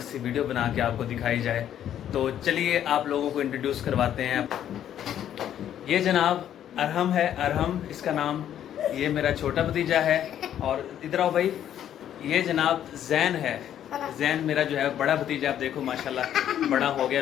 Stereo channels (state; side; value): quieter; right; 10.5 dB